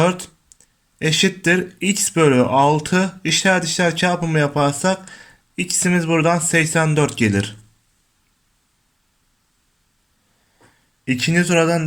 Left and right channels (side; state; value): both; identical; correlation 1.00